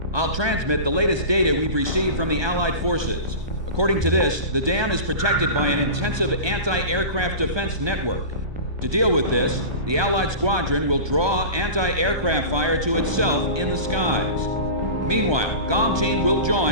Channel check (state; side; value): late; left; 1.2 ms